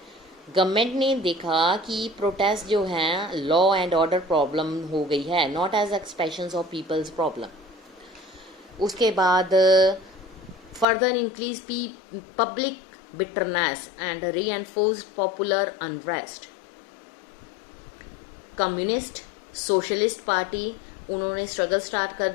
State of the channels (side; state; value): right; drops out; at 10.9 s